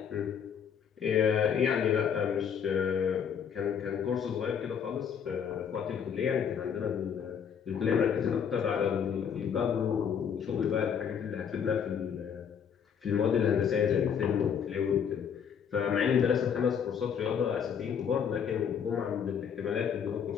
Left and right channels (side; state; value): right; quieter; 7.6 dB